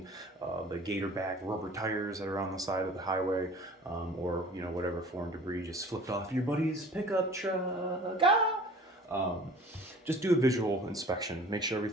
the gator back rubber tires that are on the side of the highway, or whatever foreign debris just flipped off your buddy's pickup truck. just do a visual inspection. Make sure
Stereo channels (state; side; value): normal; both; correlation 0.46